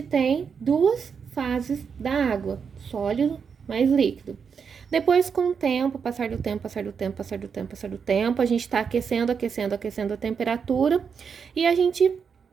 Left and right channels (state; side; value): quieter; left; 6.3 dB